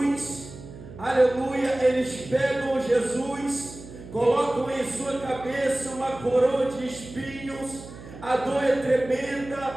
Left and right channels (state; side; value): noise; right; hum, 15 dB below the sound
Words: aleluia. Eles pegam Jesus, colocam em sua cabeça uma coroa de espinhos, a dor é